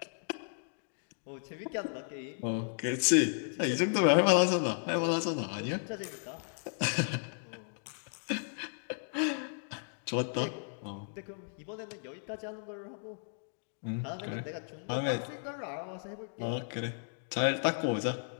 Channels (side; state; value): right; silent; digital silence